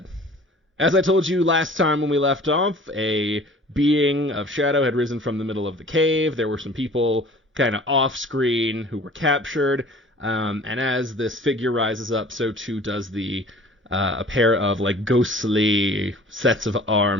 As I told you last time when we left off, a being of shadow had risen from the middle of the cave. There were some people kind of off-screen who were captured, and as this figure rises up, so too does a pair of ghostly sets of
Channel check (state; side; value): normal; both; correlation 0.47